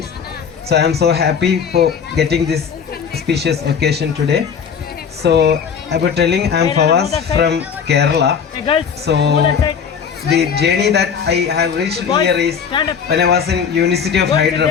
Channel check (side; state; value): right; quieter; 6.9 dB